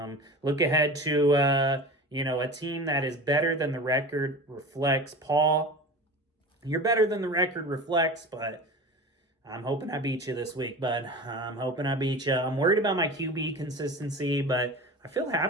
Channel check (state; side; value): normal; both; correlation 0.33